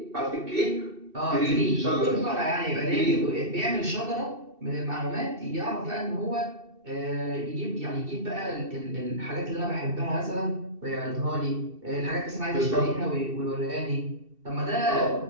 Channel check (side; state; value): left; late; 2.7 ms